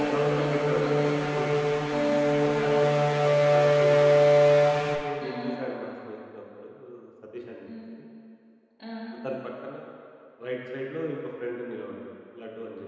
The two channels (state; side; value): identical; both; correlation 1.00